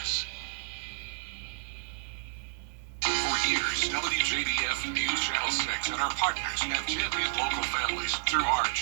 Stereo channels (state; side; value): silent; left; digital silence